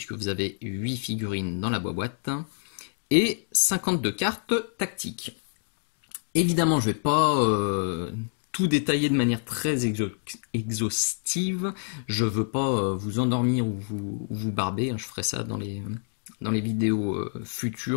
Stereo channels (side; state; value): right; silent; digital silence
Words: vous avez 8 figurines dans la boîte, et 52 cartes tactiques. Évidemment, je ne vais pas tout détailler de manière très exhaustive. Je veux pas vous endormir ou vous barber. Je ferai ça dans les vidéos